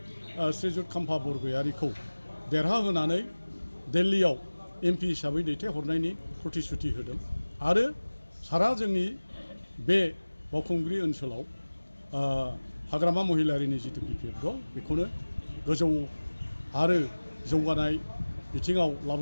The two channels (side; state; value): both; inverted; correlation -1.00